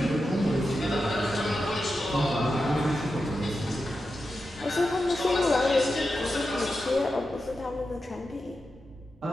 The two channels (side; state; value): both; normal; correlation 0.90